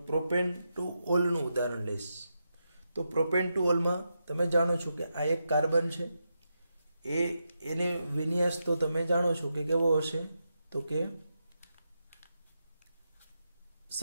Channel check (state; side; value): inverted; both; correlation -0.86